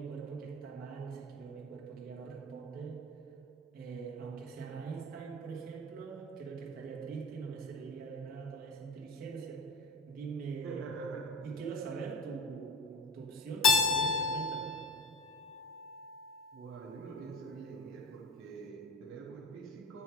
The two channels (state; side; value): normal; both; correlation 0.33